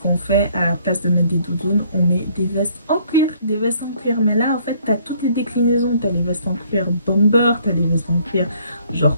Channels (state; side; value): inverted; both; correlation -0.62